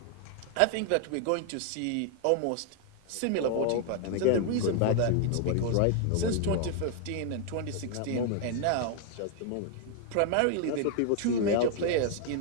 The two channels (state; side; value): different; both; correlation 0.00